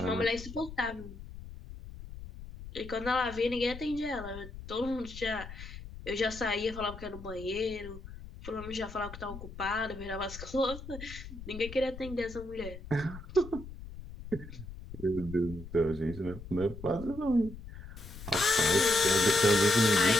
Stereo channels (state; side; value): noise; left; rumble, 13 dB below the sound